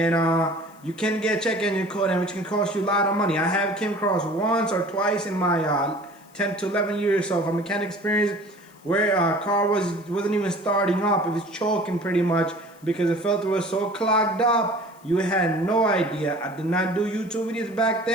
you can get a check engine code, and which can cost you a lot of money. I have came across once or twice in my 10 to 11 years of mechanic experience where a car wasn't even starting up. It was choking pretty much because the filter was so clogged up. You had no idea. I did not do YouTube videos back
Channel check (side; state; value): left; noise; hiss, 29 dB below the sound